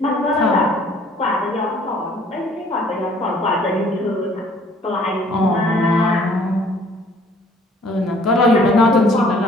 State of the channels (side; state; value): both; normal; correlation 0.57